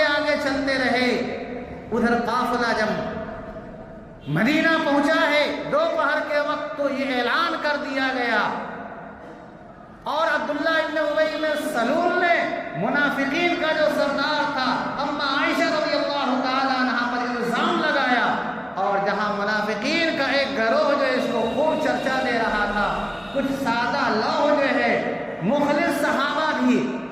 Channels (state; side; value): identical; both; correlation 1.00